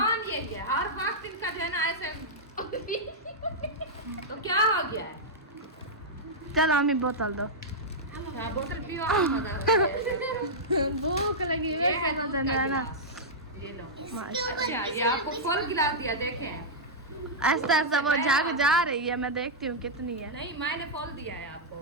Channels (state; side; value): normal; both; correlation -0.09